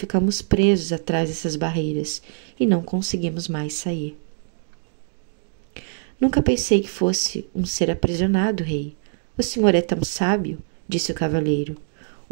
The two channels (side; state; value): left; silent; digital silence